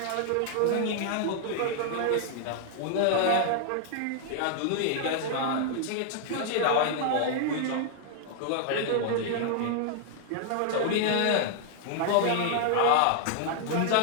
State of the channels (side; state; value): both; different; correlation 0.00